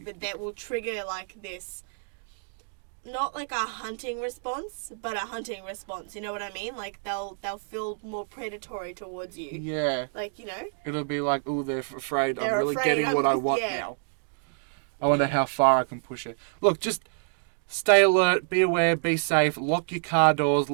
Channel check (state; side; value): silent; left; digital silence